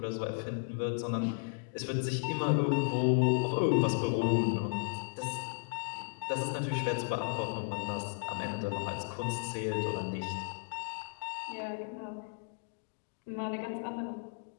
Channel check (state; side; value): silent; right; digital silence